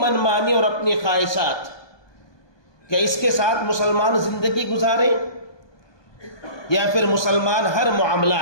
اور اپنی خواہشات، کہ اس کے ساتھ مسلمان زندگی گزارے، یا پھر مسلمان ہر معاملہ،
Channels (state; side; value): late; right; 1.2 ms